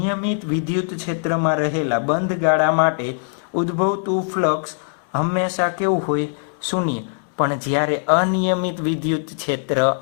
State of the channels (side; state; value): right; silent; 65 dB below the other